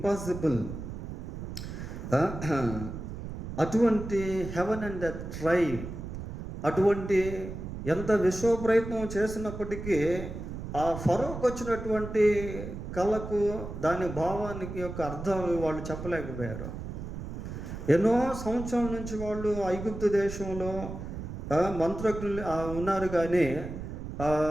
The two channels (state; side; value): noise; right; rumble, 8 dB below the sound